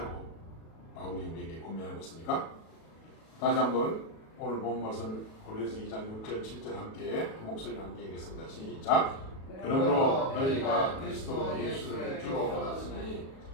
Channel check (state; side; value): late; right; 37 ms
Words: 바울이 우리에게 권면하고 있습니까? 다시 한번 오늘 본 말씀 고린도서 2장 6절 7절 함께 한 목소리 함께 읽겠습니다. 시작. 그러므로 너희가 그리스도 예수를 주로 받았으니